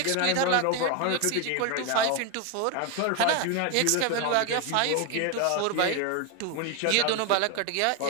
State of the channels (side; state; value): both; different; correlation 0.01